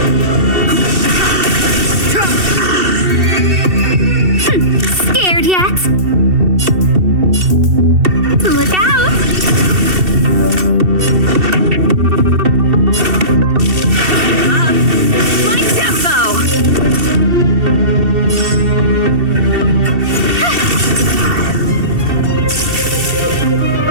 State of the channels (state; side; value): late; left; 2.7 ms